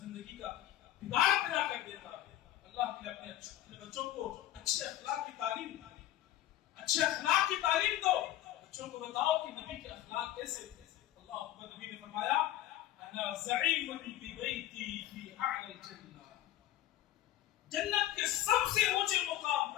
کا بگاڑ پیدا کر دیتا ہے. اللہ کے لیے اپنے بچوں کو اچھے اخلاق کی تعلیم, اچھے اخلاق کی تعلیم دو. بچوں کو بتاؤ کہ نبی کے اخلاق کیسے تھے. اللہ اکبر. نبی نے فرمایا انا زعیم ببیتی فی اعلی الجنہ. جنت کے سب سے اونچے مقام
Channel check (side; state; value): right; quieter; 13.7 dB